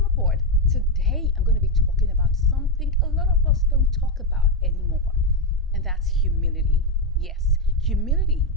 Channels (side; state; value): both; normal; correlation 0.06